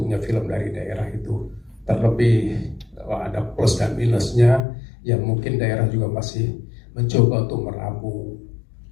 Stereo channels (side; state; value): right; drops out; at 4.6 s